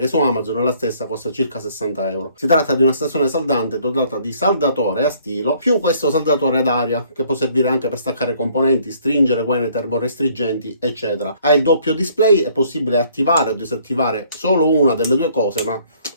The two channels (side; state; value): both; inverted; correlation -0.61